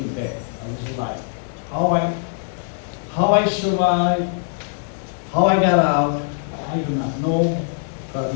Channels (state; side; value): silent; right; 62 dB below the other